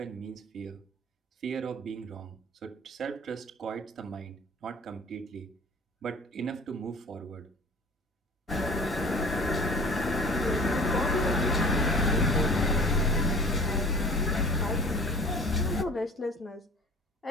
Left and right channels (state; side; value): normal; both; correlation 0.44